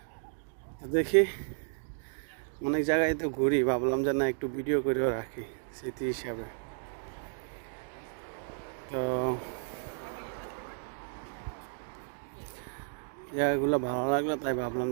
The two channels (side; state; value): left; silent; digital silence